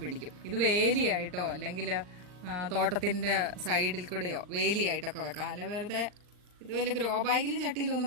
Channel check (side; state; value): left; late; 39 ms